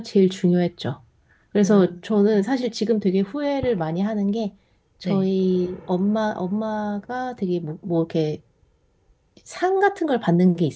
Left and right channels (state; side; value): identical; both; correlation 1.00